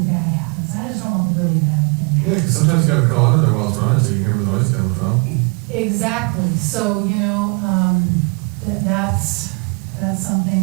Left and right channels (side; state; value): left; quieter; 32.8 dB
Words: bad happens. I just don't want the really bad thing. Yeah, 'cause sometimes you gotta crawl under there while it's running, so you can hear where the noise coming from. Exactly, so, you know, that's something